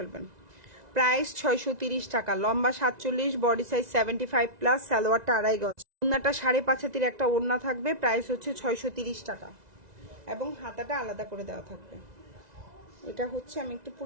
প্রাইস 630 টাকা। লম্বা 47, বডি সাইজ 75 প্লাস, সালোয়ারটা 2.5 গজ, ওড়নাটা 5.5 হাতের একটা ওড়না থাকবে। প্রাইস হচ্ছে 630 টাকা এবং হাতাটা আলাদা করে দেওয়া থাকবে। এটা হচ্ছে, আমি একটু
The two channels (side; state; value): left; late; 2.0 ms